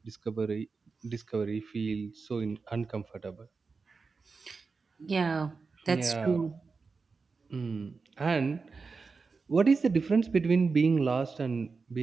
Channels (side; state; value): left; quieter; 4.5 dB